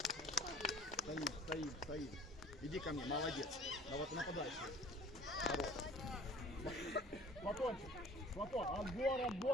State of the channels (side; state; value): both; normal; correlation 0.48